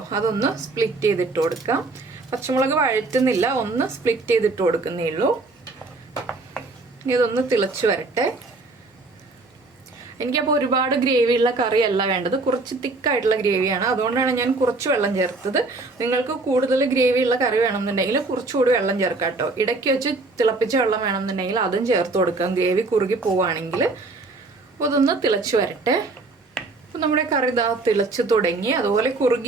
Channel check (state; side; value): quieter; left; 3.4 dB